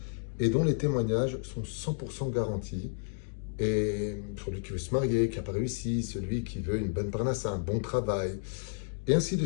et dont les témoignages sont 100% garantis. Et celui qui veut se marier, qui n'a pas réussi, celui qui veut une bonne parnassa, un bon travail, et ainsi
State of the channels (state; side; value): silent; right; digital silence